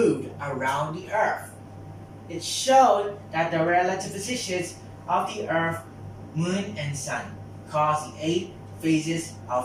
around the Earth. It showed that the relative positions of the Earth, Moon, and Sun cause the 8 phases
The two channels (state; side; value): identical; both; correlation 1.00